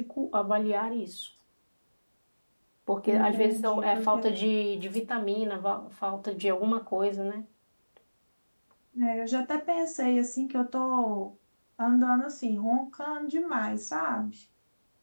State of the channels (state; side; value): inverted; both; correlation -1.00